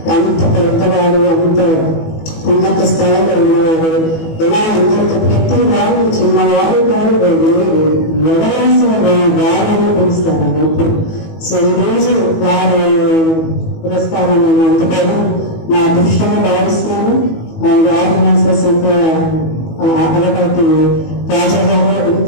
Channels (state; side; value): late; right; 18 ms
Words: అంత పెద్దవాడు, అంత ఉన్నత స్థాయిలో ఉన్నవాడు. ఎలా అందరితో ప్రతి వాడు చిన్నవాడు కాదు, ఎవరైనా సరే వాడని పిలుస్తారండి ఇప్పుడు. సో ఈరోజు వారి పురస్కారం నేను అందుకోవడం నా అదృష్టంగా భావిస్తున్నాను. ఆర్గనైజర్స్ అంతా అలవాటి రాజా గారు